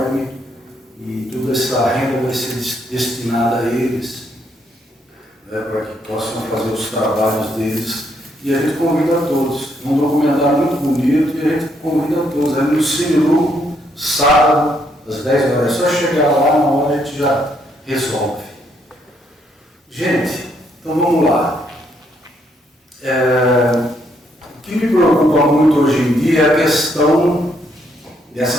E toda essa renda vai ser destinada a eles, né, para que possam fazer os trabalhos deles. E a gente convida a todos. Um documentário muito bonito e a gente convida a todos. É no Cine Grupo, sábado, às 10 horas. É só chegar lá, na hora a gente já resolve. Gente, então vamos lá. O que me preocupa muito hoje em dia é a questão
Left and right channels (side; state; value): both; normal; correlation 0.73